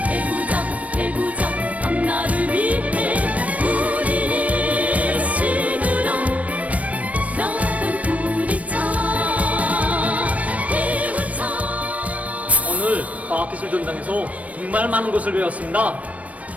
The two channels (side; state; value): left; late; 0.067 ms